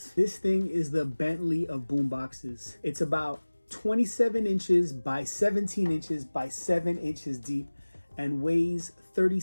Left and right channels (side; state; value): both; inverted; correlation -1.00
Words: This thing is the Bentley of boomboxes. It's about 27 inches by 17 inches by 7 inches deep and weighs